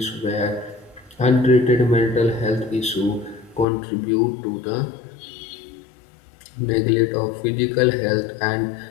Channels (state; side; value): drops out; right; at 3.7 s